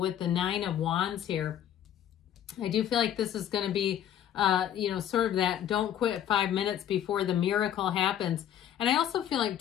the Nine of Wands here, I do feel like this is going to be, sort of that don't quit 5 minutes before the miracle happens. And I also feel like,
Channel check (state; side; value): quieter; right; 10.4 dB